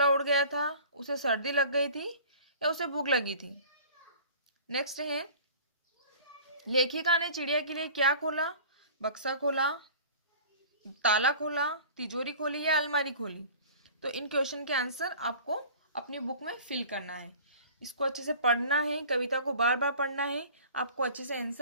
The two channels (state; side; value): inverted; both; correlation -0.43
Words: उड़ गया था, उसे सर्दी लग गई थी या उसे भूख लगी थी। नेक्स्ट है लेखिका ने चिड़िया के लिए क्या खोला, बक्सा खोला, ताला खोला, तिजोरी खोली या अलमारी खोली। तो इन क्वेश्चन के आंसर आपको अपनी बुक में फिल करना है। इसको अच्छे से पढ़ना है, कविता को बार बार पढ़ना है, आपको अच्छे से